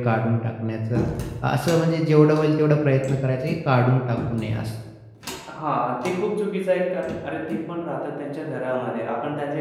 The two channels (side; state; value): both; identical; correlation 1.00